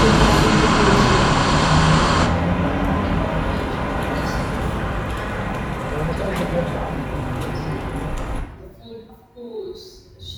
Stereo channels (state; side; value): identical; both; correlation 1.00